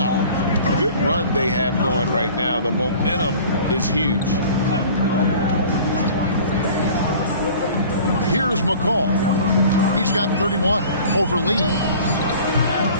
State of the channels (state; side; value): inverted; both; correlation -0.45